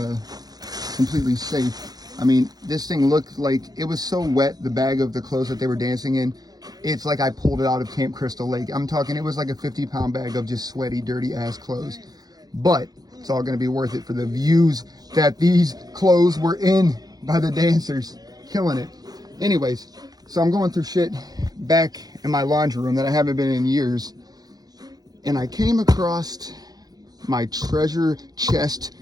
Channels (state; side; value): late; left; 0.19 ms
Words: completely safe. I mean, this thing looked like it was so wet, the bag of the clothes that they were dancing in. It's like I pulled it out of Camp Crystal Lake. I'm talking, it was like a 50-pound bag of just sweaty, dirty ass clothes. But it's all going to be worth it for the views that these clothes were in by the dancers. Killing it. Anyways, so I'm going through shit back in my laundry room that I haven't been in years. And I came across my treasure chest